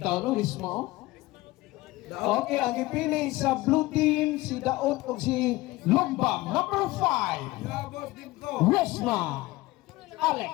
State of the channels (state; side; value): quieter; right; 19.3 dB